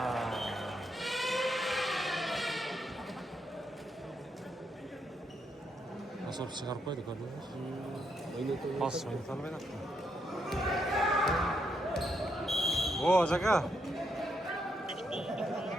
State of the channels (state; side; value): normal; both; correlation 0.78